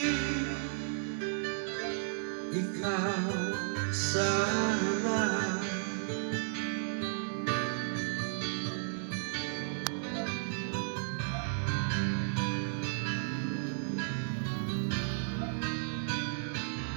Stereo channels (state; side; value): silent; left; 55 dB below the other